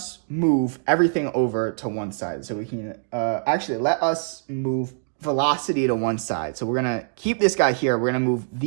move everything over to one side. So we can, actually, let us move velocity to one side. So we're going to keep this guy here. We're going to move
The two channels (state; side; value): silent; left; digital silence